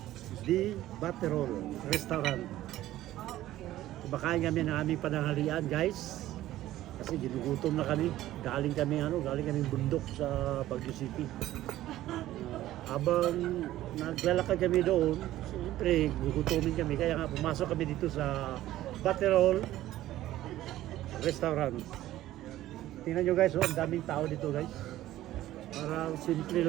di Baterol Restaurant. Kumakain kami ng aming pananghalian guys. Kasi ginugutom na kami. Galing kami bundok sa Baguio City. Habang naglalakad kami doon, siyempre gugutomin kami. Kaya nga pumasok kami dito sa Baterol Restaurant. Tingnan nyo guys, ang daming tao dito guys. Parang simple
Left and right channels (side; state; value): left; quieter; 14.5 dB